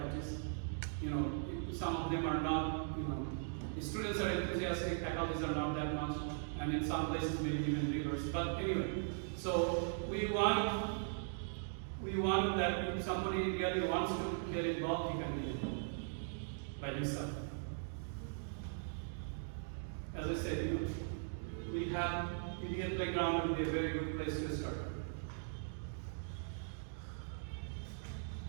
You know, some of them are not, you know, the students are enthusiastic, faculties are not that much, and in some places maybe even reverse. But anyway, so we want that if somebody really wants to get involved, he can get involved by himself. As I said, you know, we have Indian playground would be a very good place to start.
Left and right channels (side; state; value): left; silent; digital silence